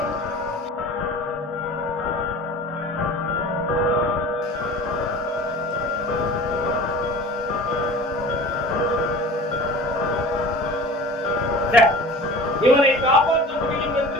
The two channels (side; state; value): both; normal; correlation 0.40